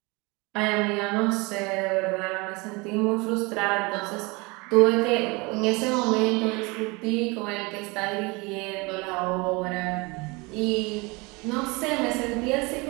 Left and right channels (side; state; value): left; quieter; 26.3 dB